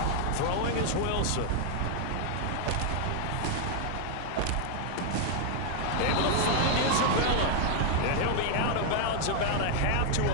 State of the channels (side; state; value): both; different; correlation 0.00